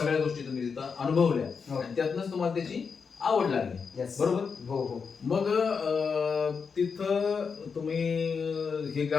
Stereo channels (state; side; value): quieter; right; 5.7 dB